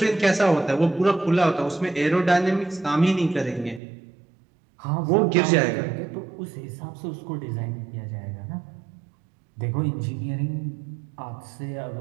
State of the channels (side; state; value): left; drops out; at 3.8 s